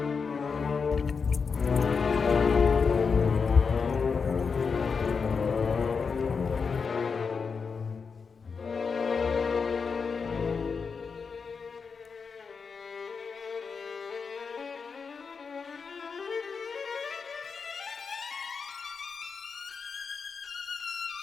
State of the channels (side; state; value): right; quieter; 5.4 dB